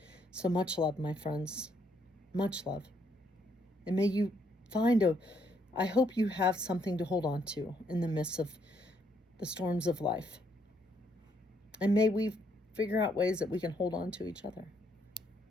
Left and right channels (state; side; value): normal; both; correlation 0.72